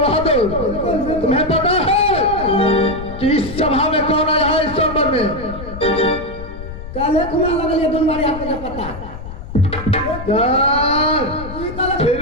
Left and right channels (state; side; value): noise; left; rumble, 11 dB below the sound